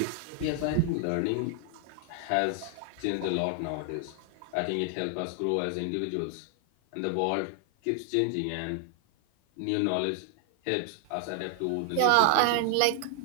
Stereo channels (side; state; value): both; different; correlation 0.00